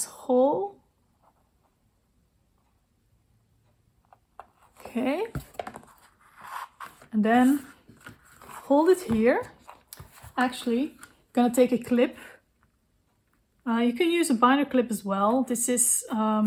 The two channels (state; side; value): identical; both; correlation 1.00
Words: hole. Okay. And then hold it here. Actually, I'm gonna take a clip. You can use a binder clip as well. This is